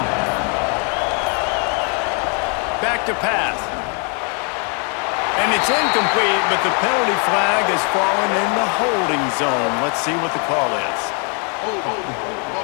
Back to pass. And it's incomplete, but the penalty flag has fallen in the holding zone. Let's see what the call is.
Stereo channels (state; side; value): quieter; right; 38.0 dB